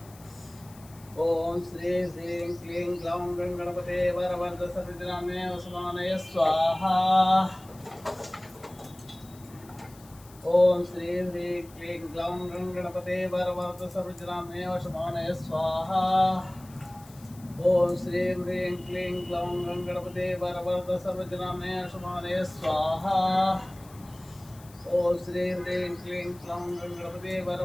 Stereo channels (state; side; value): noise; left; hiss, 23 dB below the sound